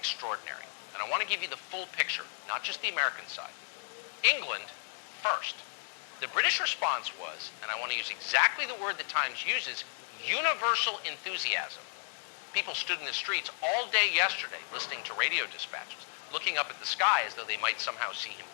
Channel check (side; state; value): right; silent; 55 dB below the other